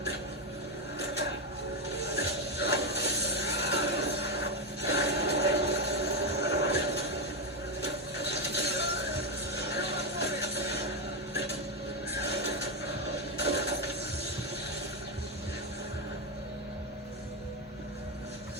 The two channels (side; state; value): both; normal; correlation 0.07